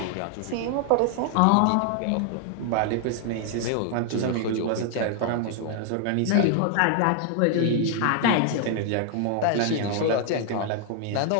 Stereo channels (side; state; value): both; different; correlation 0.00